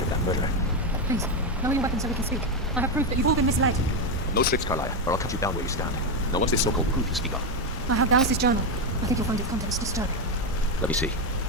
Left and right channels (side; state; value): both; normal; correlation 0.07